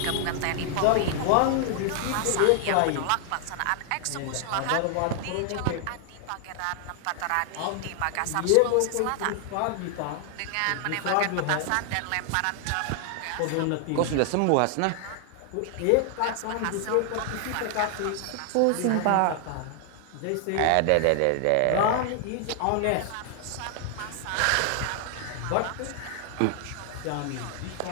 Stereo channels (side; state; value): both; different; correlation 0.00